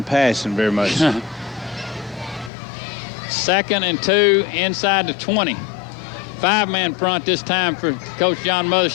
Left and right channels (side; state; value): right; drops out; at 2.5 s